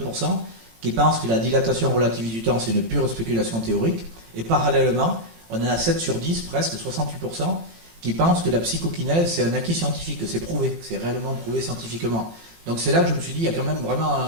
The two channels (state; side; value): late; left; 18 ms